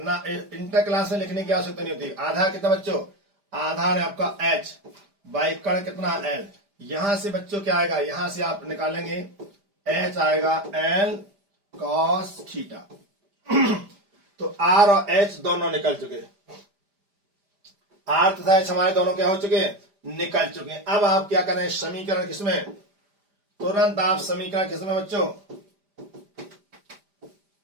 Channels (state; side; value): late; left; 5.0 ms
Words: ना, इंटर क्लास में लिखने की आवश्यकता नहीं होती। आधार कितना बच्चों? आधार है आपका h, बाई कण कितना? l। यहां से बच्चों क्या आएगा? यहां से आप निकालेंगे h आएगा l cos थीटा। तो r और h दोनों निकल चुके। आर तथा एच हमारे दोनों क्या हो चुके हैं, निकल चुके हैं। अब आप क्या करें, समीकरण किसमें, तुरंत आप समीकरण किसमें बच्चों,